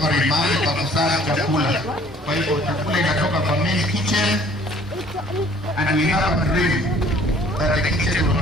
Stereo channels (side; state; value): both; normal; correlation 0.55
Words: ni mahali pa kusaga chakula. Kwa hivyo chakula inatoka kwa main kitchen and we have a dream that the kitchen will